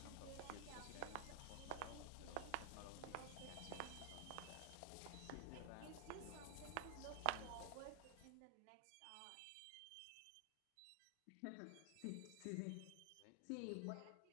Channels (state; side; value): different; both; correlation 0.00